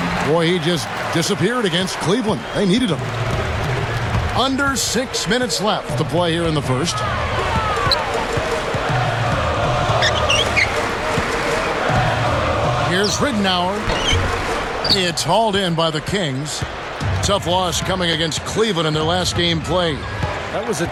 Boy, he just disappeared against Cleveland. They needed him. Under 6 minutes left to play here in the first. Here's Ridnour. It's hauled in by the Kings. Tough loss coming against Cleveland in their last game played. That was a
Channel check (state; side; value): identical; both; correlation 1.00